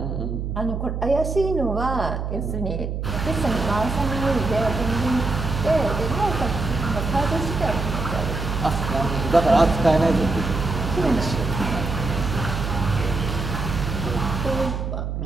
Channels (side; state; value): right; noise; hum, 3 dB below the sound